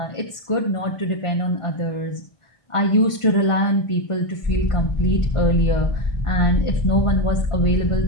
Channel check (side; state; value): right; late; 1.6 ms